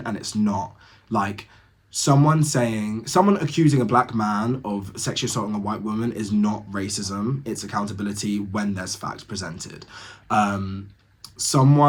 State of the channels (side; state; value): both; identical; correlation 1.00